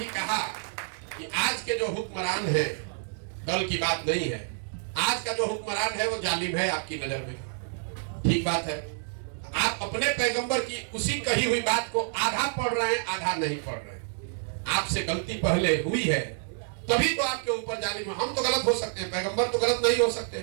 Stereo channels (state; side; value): silent; left; digital silence